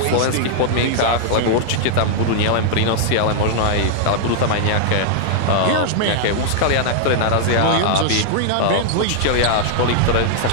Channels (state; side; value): different; both; correlation -0.01